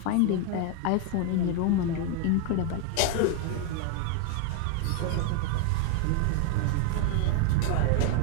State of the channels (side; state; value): both; different; correlation 0.01